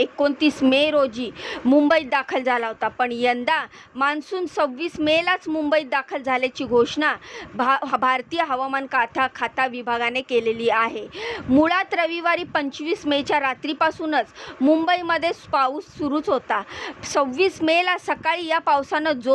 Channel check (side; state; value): both; identical; correlation 1.00